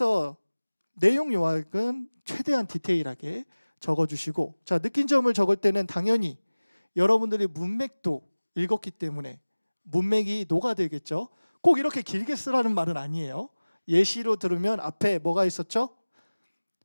내용 요약은 최대한 디테일하게 적어주시고, 자, 느낀 점을 적을 때는 당연히 여러분들이 문맥도 읽었기 때문에 문맥이 녹아들겠죠. 꼭 이렇게 길게 쓰라는 말은 아니에요. 예시로 들으면 앞에 뭐가 있었죠?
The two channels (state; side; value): inverted; both; correlation -1.00